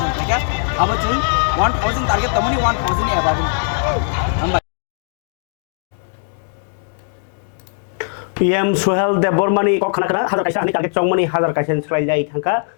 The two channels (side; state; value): right; silent; 67 dB below the other